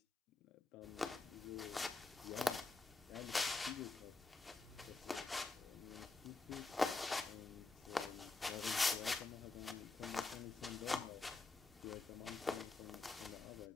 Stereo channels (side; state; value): right; quieter; 3.6 dB